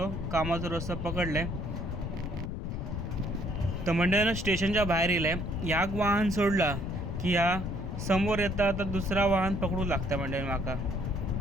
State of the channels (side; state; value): left; noise; rumble, 4 dB below the sound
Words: कामाचा रस्ता पकडलं आहे. तर मंडळीनं स्टेशनच्या बाहेर येईल आहे. याक वाहन सोडला की या समोर येता तर दुसरा वाहन पकडू लागतं मंडळी माका.